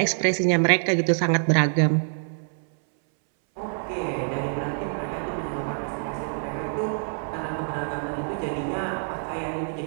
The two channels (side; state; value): left; silent; 61 dB below the other